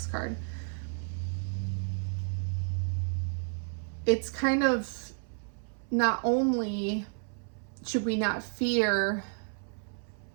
card. It's kind of, not only should we not fear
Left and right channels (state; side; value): silent; left; 57 dB below the other